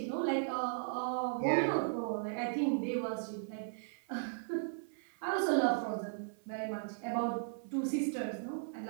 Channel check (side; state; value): left; silent; 53 dB below the other